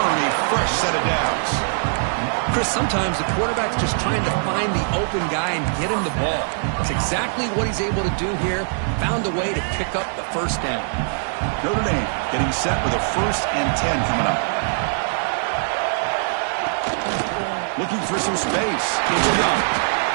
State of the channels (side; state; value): left; silent; 63 dB below the other